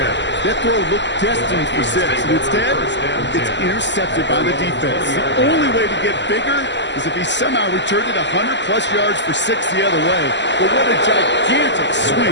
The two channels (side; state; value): right; late; 0.52 ms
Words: That throw looked destined for 6, and instead, it's intercepted by the defense. The only way to get bigger is if he somehow returned it 100-plus yards for 6 the other way. But what a gigantic swing